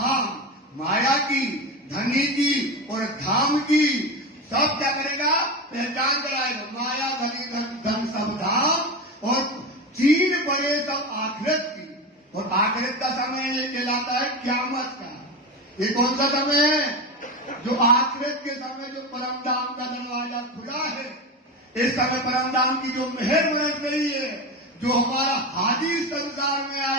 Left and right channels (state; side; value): normal; both; correlation 0.22